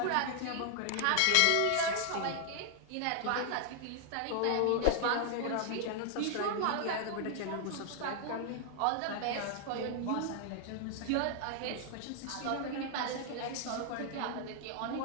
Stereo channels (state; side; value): different; both; correlation 0.00